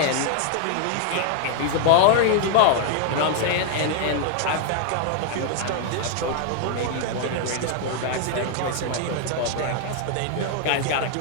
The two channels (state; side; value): different; both; correlation 0.00